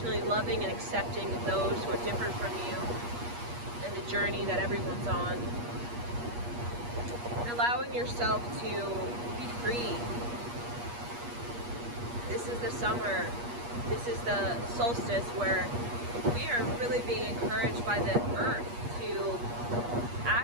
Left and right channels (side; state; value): left; late; 8.4 ms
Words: loving and accepting of those who are different from you and the journey that everyone's on. And allowing yourself to be free. This is the summer. This is the solstice where we are really being encouraged by the earth to